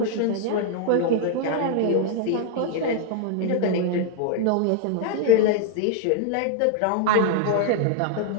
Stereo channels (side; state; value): both; different; correlation 0.00